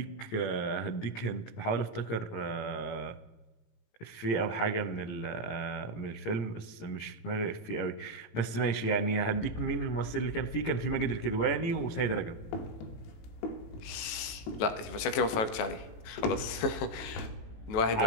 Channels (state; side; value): late; right; 18 ms